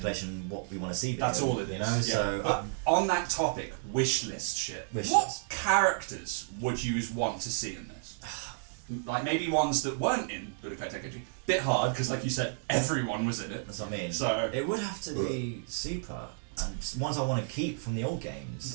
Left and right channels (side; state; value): left; silent; digital silence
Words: What we want to see. That's all it is. You know. Yeah. So but on that topic, wish list shit. What characters would you want to see in this? Like maybe ones that weren't in Budokai Tenkaichi. Bit hard because, like you said, everyone was in it. That's what I mean. So it would have to be Super and ones I want to keep from the old